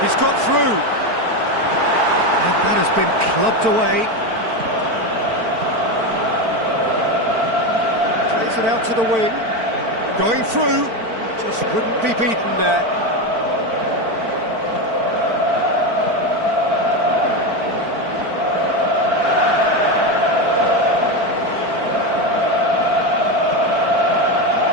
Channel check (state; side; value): late; left; 4.5 ms